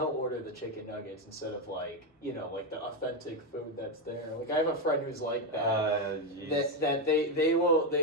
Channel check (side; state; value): both; normal; correlation 0.07